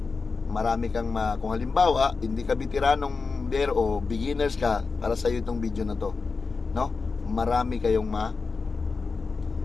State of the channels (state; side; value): quieter; right; 4.5 dB